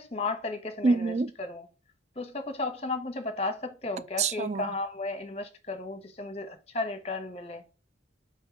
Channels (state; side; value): normal; both; correlation 0.35